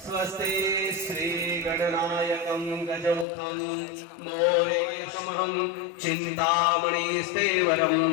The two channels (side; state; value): right; drops out; at 3.2 s